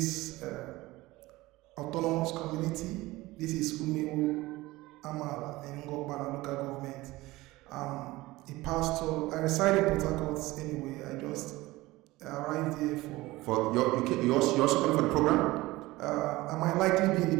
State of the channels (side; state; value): left; quieter; 19.4 dB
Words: autonomous community. This is Umewo Amala in Ngor Okpala local government. I'm a pastor. I reside in Port Harcourt anyway. I just arrived here for you also coming for the program? I might likely be in